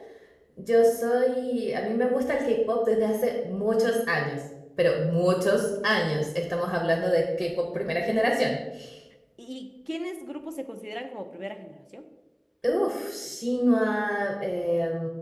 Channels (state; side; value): identical; both; correlation 1.00